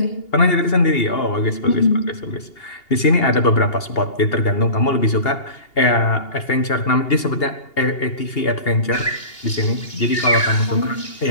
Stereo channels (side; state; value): right; late; 2.8 ms